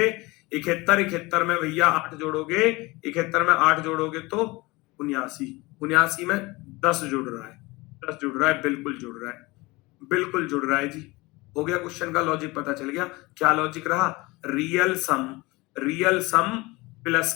71, 71 में भैया 8 जोड़ोगे, 71 में 8 जोड़ोगे तो 79, 79 में 10 जुड़ रहा है, 10 जुड़ रहा है, बिल्कुल जुड़ रहा है, बिल्कुल जुड़ रहा है जी। हो गया, क्वेश्चन का लॉजिक पता चल गया। क्या लॉजिक रहा, रियल सम, रियल सम प्लस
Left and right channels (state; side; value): quieter; right; 22.8 dB